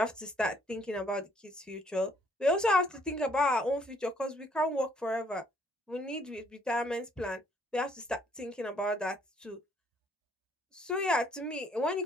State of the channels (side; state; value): both; normal; correlation 0.66